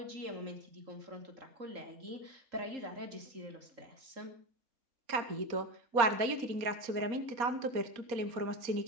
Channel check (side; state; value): left; late; 4.2 ms